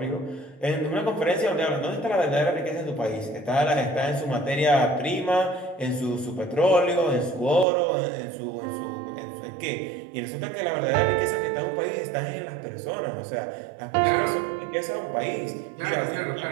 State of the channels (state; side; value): drops out; left; at 7.7 s